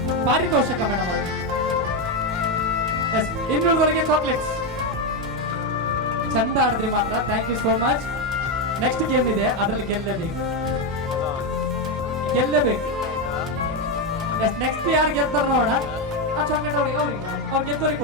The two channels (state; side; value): normal; both; correlation 0.07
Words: ಪಾರಿತೋಷಕ ಮೇಡಮ್ ಅವರು. ಇನ್ನೊಂದುವರೆಗೆ ಚಾಕ್ಲೇಟ್ಸ್. ಚಂದ ಆಡಿದ್ರಿ ಮಾತ್ರ. Thank you so much. Next game ಇದೆ, ಅದರಲ್ಲಿ ಗೆಲ್ಲಬೇಕು. ನೆಕ್ಸ್ಟ್ ಯಾರು ಗೆಲ್ತಾರ ನೋಡೋಣ. ಅವ್ರು ಗೆದ್ದವ್ರಿಗೆ